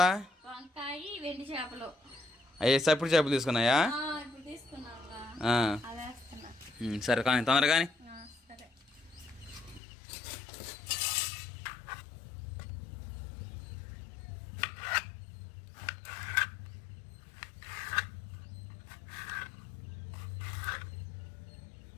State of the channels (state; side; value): drops out; right; at 9.8 s